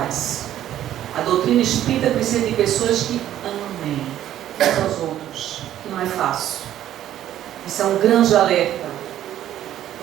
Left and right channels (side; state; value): left; quieter; 12.0 dB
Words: A doutrina espírita precisa de pessoas que amem uns aos outros, que não é fácil. Isso é um grande alerta.